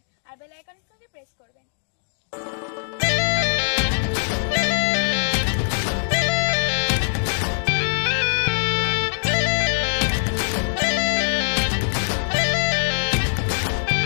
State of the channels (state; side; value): silent; right; digital silence